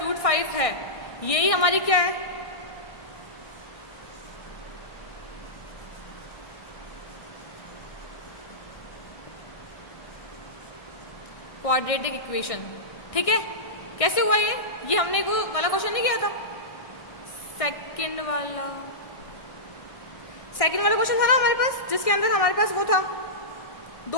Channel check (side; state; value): right; late; 1.6 ms